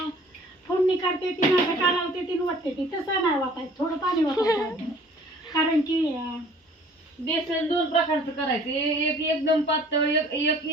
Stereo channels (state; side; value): normal; both; correlation 0.52